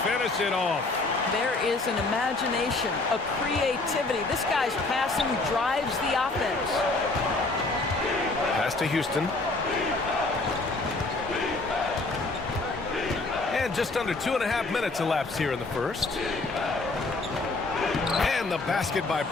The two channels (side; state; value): right; quieter; 3.3 dB